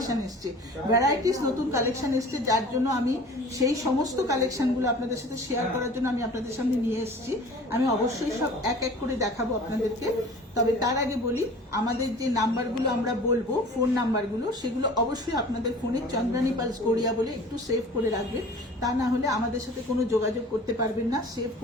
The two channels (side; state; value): both; normal; correlation 0.43